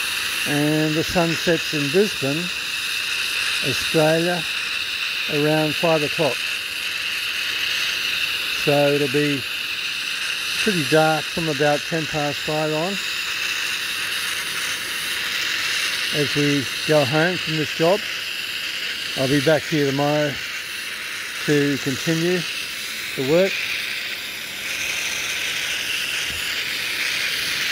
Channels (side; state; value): both; identical; correlation 1.00